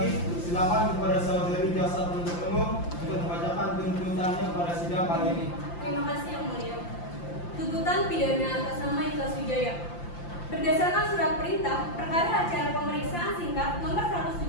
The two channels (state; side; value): late; right; 5.8 ms